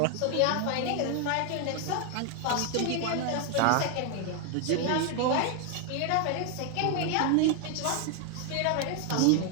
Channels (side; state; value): both; different; correlation 0.01